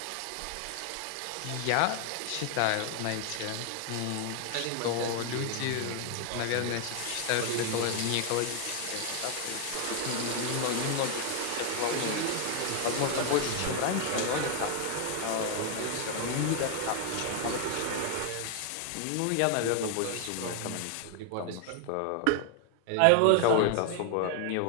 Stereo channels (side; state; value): both; different; correlation 0.00